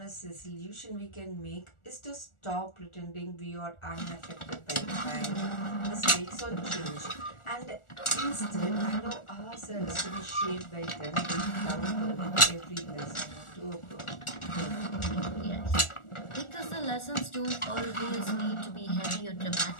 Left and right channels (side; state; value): right; late; 1.4 ms